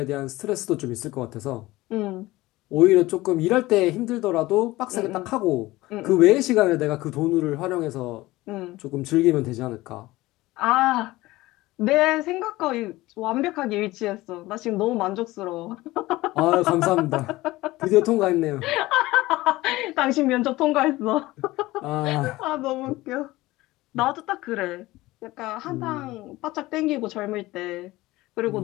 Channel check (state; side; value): quieter; right; 18.7 dB